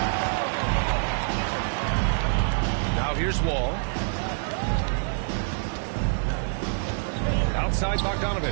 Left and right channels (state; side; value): silent; left; digital silence